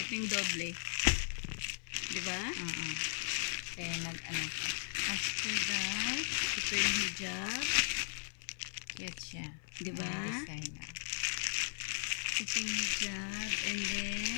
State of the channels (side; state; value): right; silent; 53 dB below the other